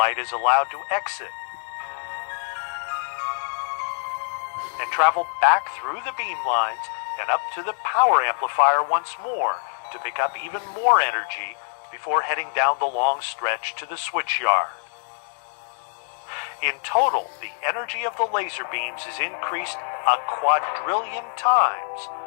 is allowed to exit and travel back through the beam lines and up to the power amplifier once more, to pick up even more energy before heading down the long stretch to the switchyard. In total, the energy of the laser beams is increased a quadrillion times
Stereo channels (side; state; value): right; silent; digital silence